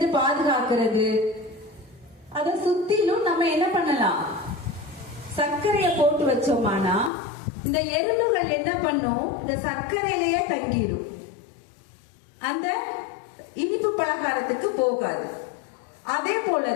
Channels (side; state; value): right; drops out; at 7.1 s